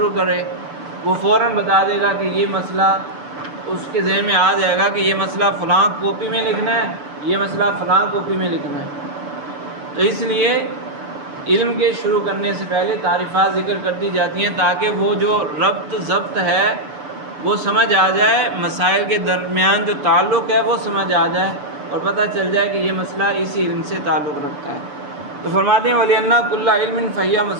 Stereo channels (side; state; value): left; late; 6.9 ms